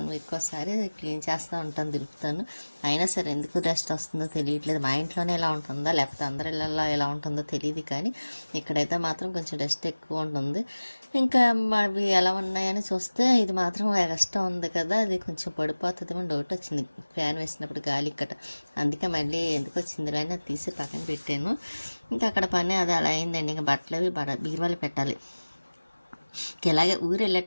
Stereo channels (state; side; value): inverted; both; correlation -1.00